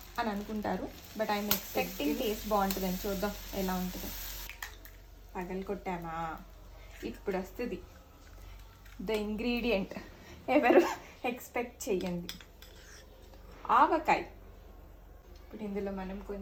అని అనుకుంటారు. బట్ ఐఎమ్ ఎక్స్పెక్టింగ్ టేస్ట్ బాగుంటుందని. చూద్దాం ఎలా ఉంటుందో. పగలు కొట్టామా, ఇప్పుడు వస్తుంది ద ఇంగ్రీడియంట్. ఎవరు ఎక్స్పెక్ట్ చేయండి, ఆవకాయ. ఇప్పుడు ఇందులో మనం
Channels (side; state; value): both; identical; correlation 1.00